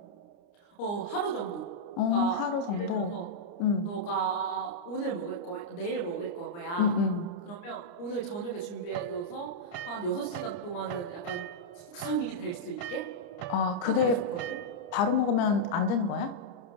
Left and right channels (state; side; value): late; right; 29 ms